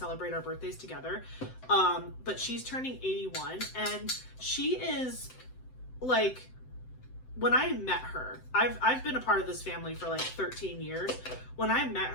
our birthdays together. But she's turning 81 and she is like, when I met her, I've been a part of this family for like 13 years. When I met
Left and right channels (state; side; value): late; right; 7.8 ms